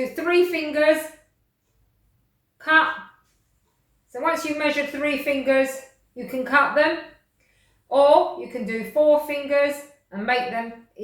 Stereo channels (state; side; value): identical; both; correlation 1.00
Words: 3 fingers, cut. So once you measure 3 fingers, you can cut them. Or you can do 4 fingers and make them